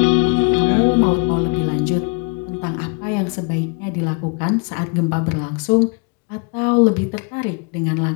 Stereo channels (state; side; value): quieter; right; 35.0 dB